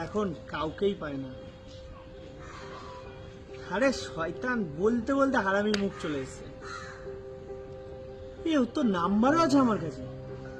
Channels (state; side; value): identical; both; correlation 1.00